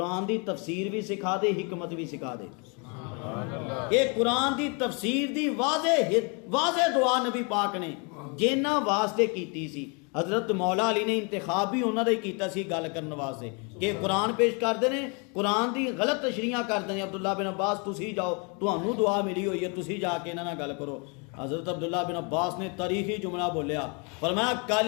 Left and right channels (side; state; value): right; quieter; 33.8 dB